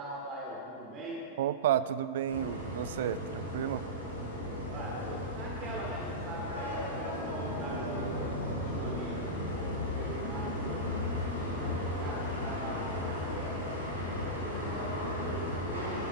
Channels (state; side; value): normal; both; correlation -0.15